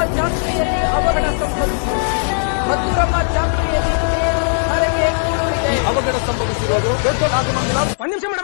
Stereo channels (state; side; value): silent; right; digital silence